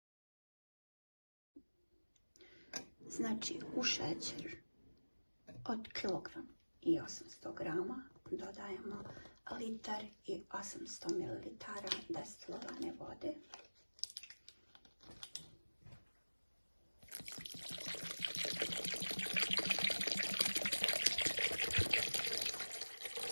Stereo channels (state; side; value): inverted; both; correlation -1.00